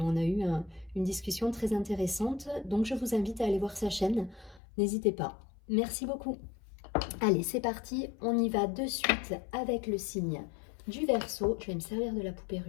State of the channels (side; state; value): right; drops out; at 4.6 s